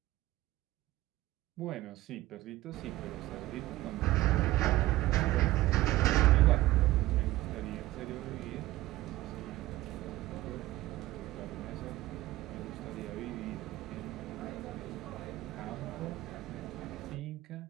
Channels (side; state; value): left; quieter; 17.1 dB